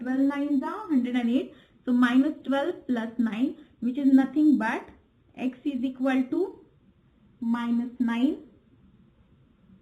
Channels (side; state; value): both; identical; correlation 1.00